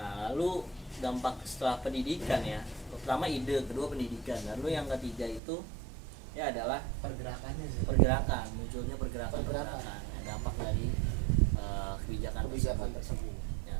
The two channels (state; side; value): drops out; left; at 5.4 s